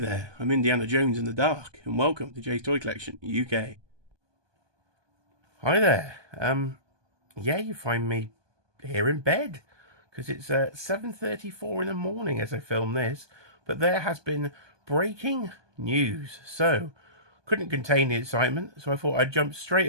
I'm Indiana Jones in the Dark, and welcome to Jay's Toy Collection, UK. Hi there, yeah, you find me here in bed, because it's 7:34 in the morning as I film this, but there has been breaking news, so couldn't contain the excitement, so I thought I'd jump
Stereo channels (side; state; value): left; late; 1.2 ms